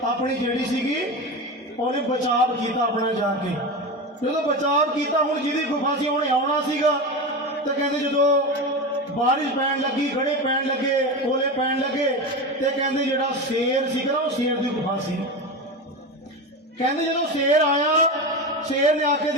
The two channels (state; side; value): normal; both; correlation 0.22